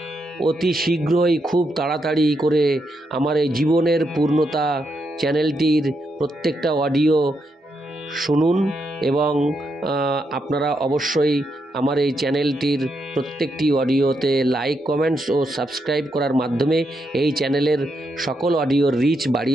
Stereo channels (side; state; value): both; normal; correlation 0.81